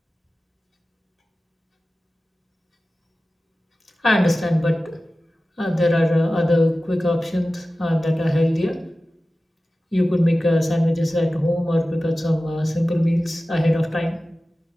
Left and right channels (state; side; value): normal; both; correlation 0.96